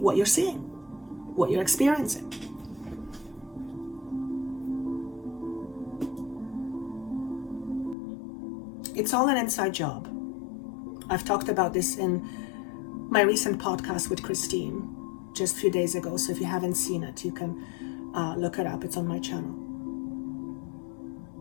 you're seeing, what you're experiencing. It's all an inside job. I've talked about this in my recent podcast with Christine just a few days ago. So if you haven't seen it, you can look it up. It's on my channel.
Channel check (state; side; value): drops out; right; at 8.0 s